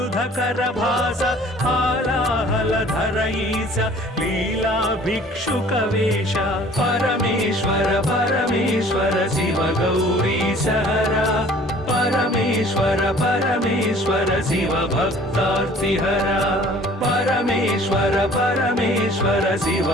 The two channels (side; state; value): both; normal; correlation 0.51